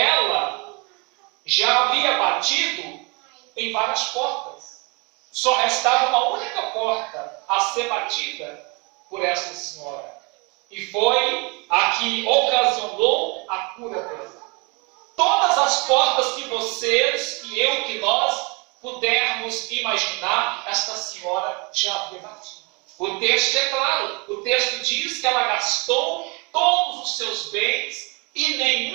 já havia batido em várias portas. Só restava uma única porta a ser batida por essa senhora. E foi a que ocasionou a cura dela. Todas as portas que vocês, que eu, que nós pudermos imaginar, esta senhora já havia batido. O texto é claro. O texto diz que ela gastou todos os seus bens e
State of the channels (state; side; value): quieter; left; 30.0 dB